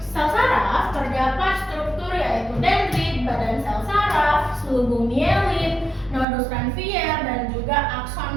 sel saraf terdapat struktur yaitu dendrit, badan sel saraf, selubung mielin, nodus ranvier, dan juga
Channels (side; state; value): left; drops out; at 6.2 s